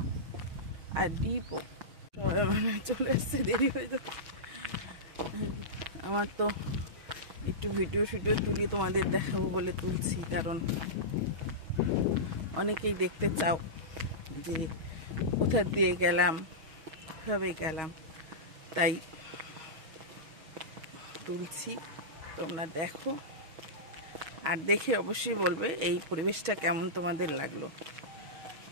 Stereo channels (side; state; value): left; late; 6.4 ms